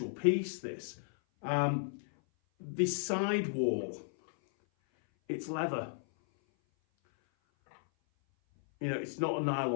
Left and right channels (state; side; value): silent; right; 55 dB below the other